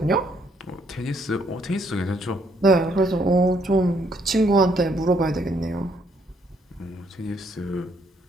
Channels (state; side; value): normal; both; correlation 0.69